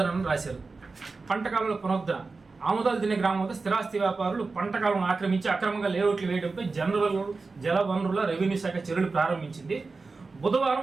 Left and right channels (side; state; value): left; quieter; 4.0 dB